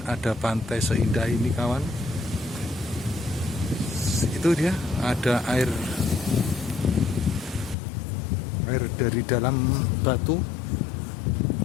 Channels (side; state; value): right; drops out; at 7.8 s